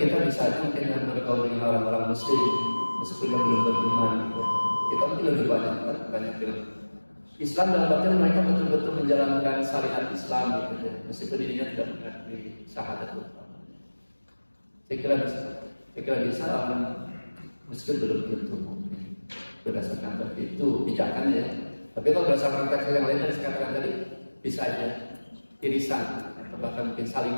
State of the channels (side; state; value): both; inverted; correlation -1.00